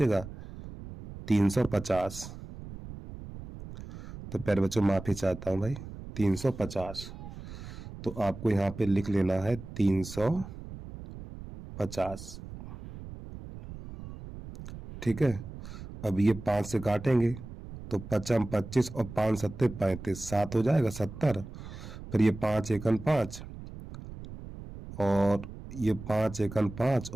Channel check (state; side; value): noise; right; rumble, 12 dB below the sound